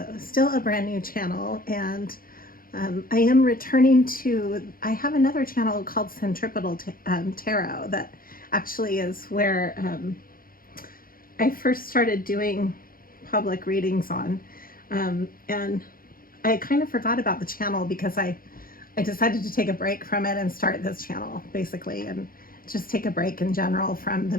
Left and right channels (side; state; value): right; late; 0.42 ms